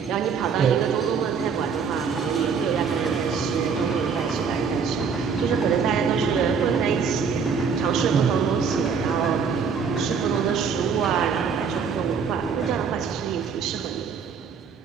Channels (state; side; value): quieter; left; 6.1 dB